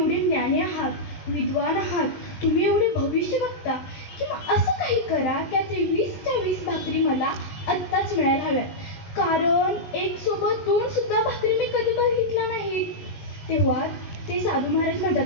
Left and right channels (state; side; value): late; right; 19 ms